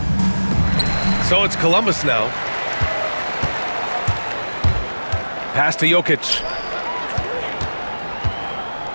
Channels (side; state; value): both; inverted; correlation -1.00